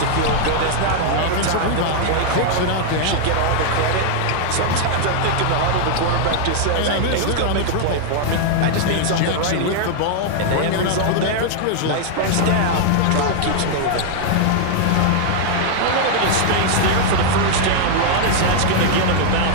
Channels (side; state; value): both; different; correlation 0.00